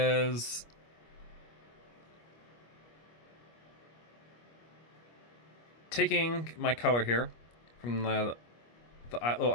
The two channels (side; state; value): right; late; 25 ms